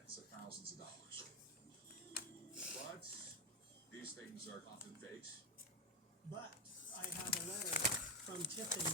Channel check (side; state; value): both; normal; correlation 0.10